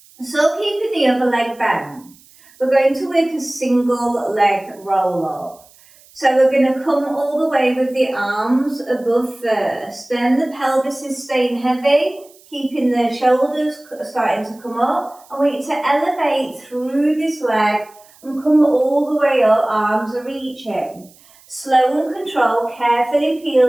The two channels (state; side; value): noise; right; hiss, 27 dB below the sound